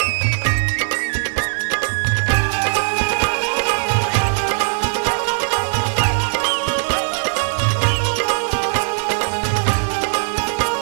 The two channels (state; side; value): silent; left; 66 dB below the other